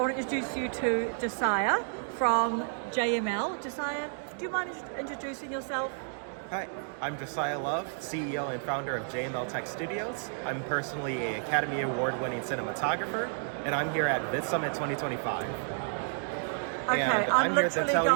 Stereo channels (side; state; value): left; silent; digital silence